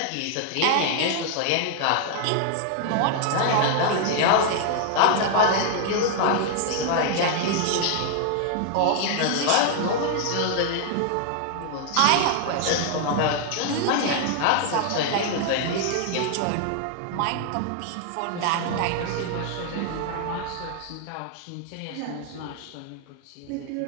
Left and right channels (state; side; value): different; both; correlation 0.00